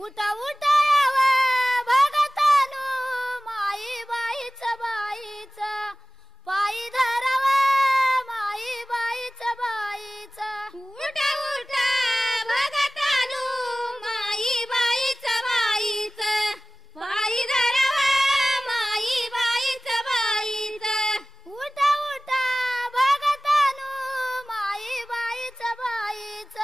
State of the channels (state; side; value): normal; both; correlation 0.97